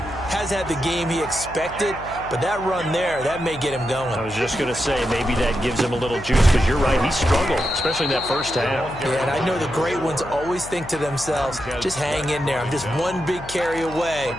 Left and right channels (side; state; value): left; noise; hum, 15 dB below the sound